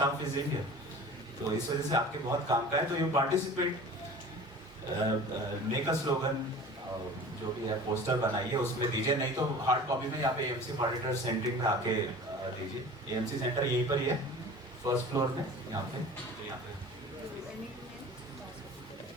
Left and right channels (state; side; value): normal; both; correlation 0.41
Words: is Indian, तो इस वजह से आपके बहुत काम का है। तो you participate, make a slogan, जो भी है पोस्टर बनाइए, उसमें दीजिए, नहीं तो हार्ड कॉपी में यहाँ पे एएमसी ऑडिटर सेंटरिंग में आके दीजिए। एएमसी सेंटर यहीं पर ही है, फर्स्ट फ्लोर में, यहाँ पे।